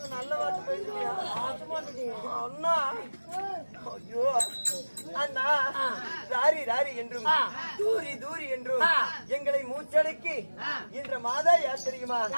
நல்ல வார்த்தை பேசுவியா அண்ணா ஐயோ அண்ணா ராரி ராரி என்றும் தூரி தூரி என்றும் எங்களை மூச்சடக்கி என்ற மாதா யார் தெரியுமா?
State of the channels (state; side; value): inverted; both; correlation -1.00